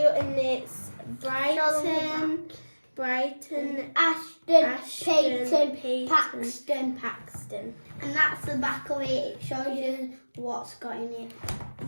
and it's Brighton, Ashton, Payton, Paxton. And that's the back of it. It shows you what's got in it.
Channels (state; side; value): inverted; both; correlation -1.00